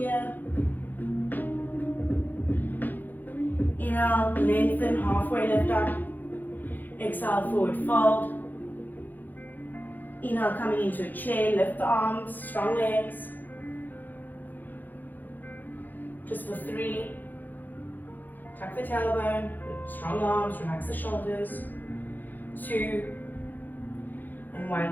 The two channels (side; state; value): right; late; 0.086 ms